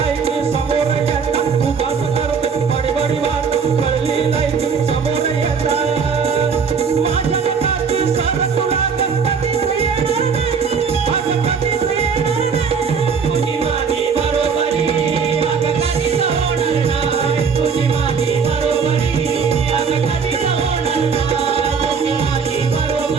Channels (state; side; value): quieter; left; 5.9 dB